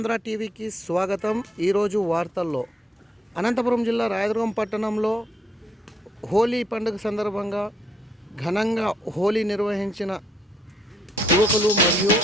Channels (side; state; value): both; normal; correlation 0.72